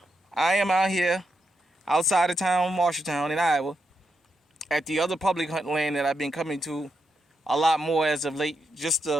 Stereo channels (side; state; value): both; normal; correlation 0.84